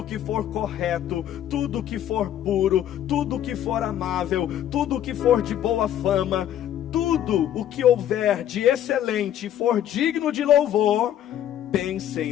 que for correto, tudo que for puro, tudo que for amável, tudo que for de boa fama, tudo o que houver de excelente e for digno de louvor,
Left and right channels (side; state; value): right; quieter; 11.0 dB